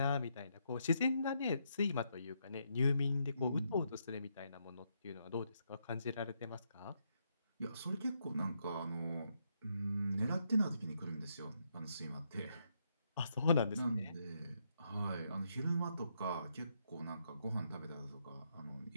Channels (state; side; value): inverted; both; correlation -0.77